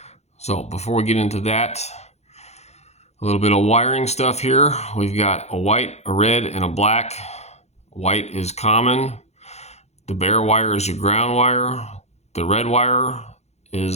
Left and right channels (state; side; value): late; right; 0.31 ms